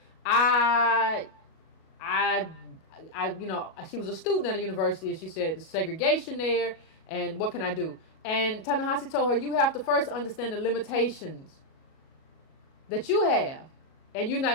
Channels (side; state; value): right; late; 37 ms